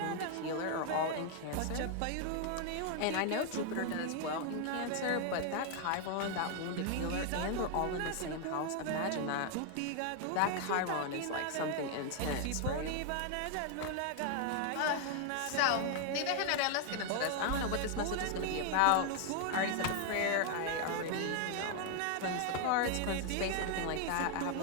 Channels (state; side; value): different; both; correlation 0.00